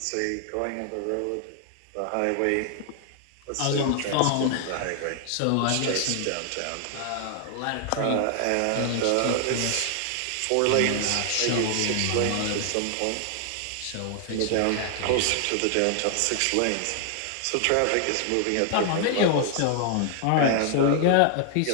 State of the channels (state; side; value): different; both; correlation 0.00